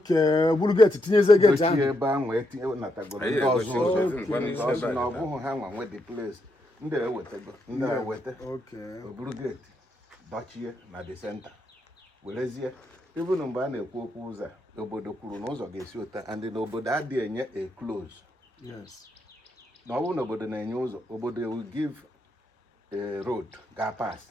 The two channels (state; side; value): normal; both; correlation 0.80